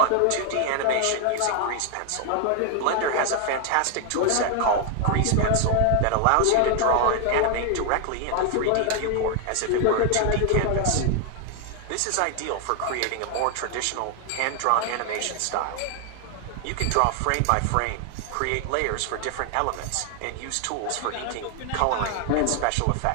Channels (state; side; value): different; both; correlation 0.00